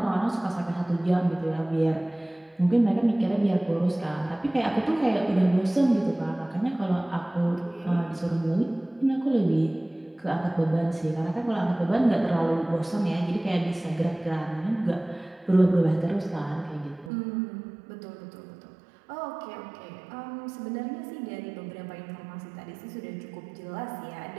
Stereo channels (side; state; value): left; drops out; at 17.1 s